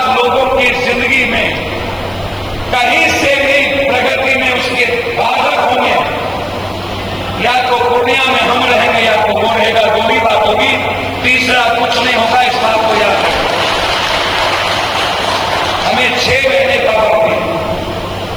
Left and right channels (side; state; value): right; noise; hiss, 27 dB below the sound